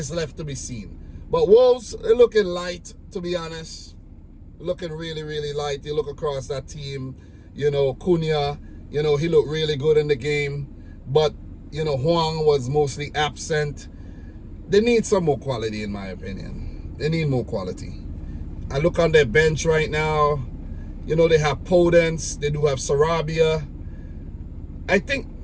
left to be seen. But Wolves, they're looking light, to be honest. Looking really, really light. You look across that team, Cunha, he looked really good in the game. But, Huang was mostly absent. They need some more quality, in my opinion. They need more quality. I look on their bench right now. They have Podence. They do have Sarabia. I think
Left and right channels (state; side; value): identical; both; correlation 1.00